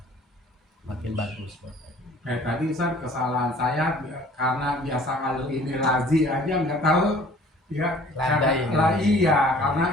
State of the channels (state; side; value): normal; both; correlation 0.51